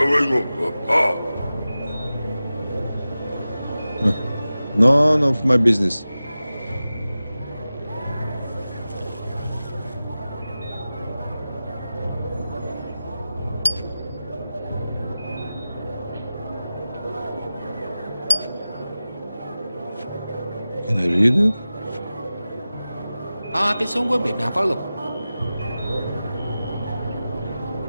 None of my business. Can I read it? Tiếng súng của Việt Nam pháp luật.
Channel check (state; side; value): inverted; both; correlation -0.95